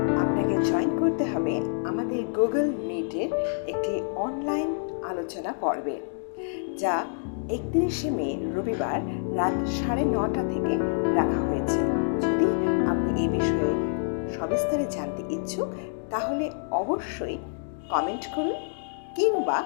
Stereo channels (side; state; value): right; silent; digital silence